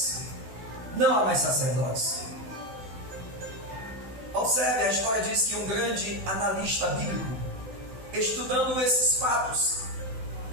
não há mais sacerdotes. Observe, a história diz que um grande analista bíblico, estudando esses fatos,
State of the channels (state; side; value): late; left; 16 ms